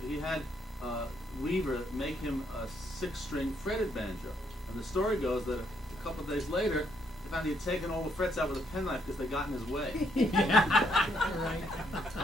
he had Weaver make him a 6-string fretted banjo. And the story goes that a couple of days later, they found he had taken all the frets out with a penknife because they got in his way. Right.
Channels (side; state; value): both; normal; correlation 0.72